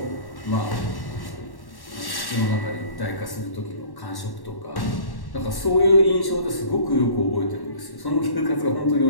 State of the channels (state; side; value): late; right; 1.1 ms